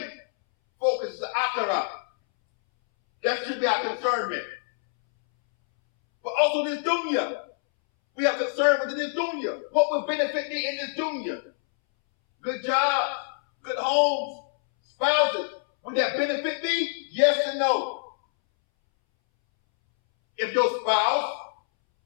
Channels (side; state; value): right; silent; 61 dB below the other